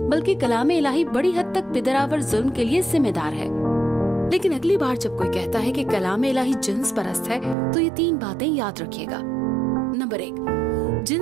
बल्कि कलाम इलाही बड़ी हद तक पिदरावर जुल्म के लिए जिम्मेदार है। लेकिन अगली बार जब कोई कहता है कि कलाम इलाही जिन्स परस्त है, तो ये 3 बातें याद रखिएगा। नंबर 1,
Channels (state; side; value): drops out; left; at 7.6 s